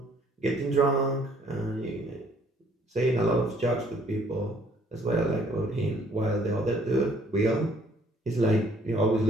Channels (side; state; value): both; normal; correlation 0.62